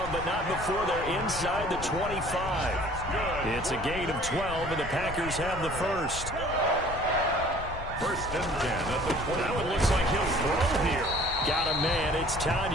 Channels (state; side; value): noise; left; rumble, 10 dB below the sound